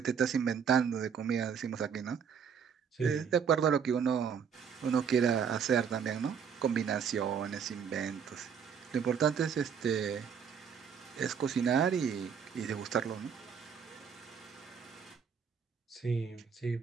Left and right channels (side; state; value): left; quieter; 7.1 dB